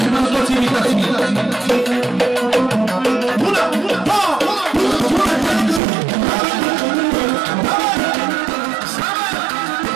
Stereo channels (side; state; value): left; drops out; at 5.8 s